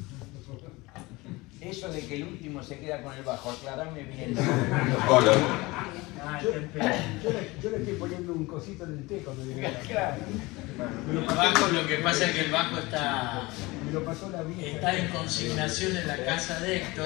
Eso de que el último se queda con el bajo, aclarame bien. Yo le estoy poniendo un cosito en el té cuando llegué. Claro. El bajo, lo que pasa es que el bajo está En consignación en la casa de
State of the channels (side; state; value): right; quieter; 22.3 dB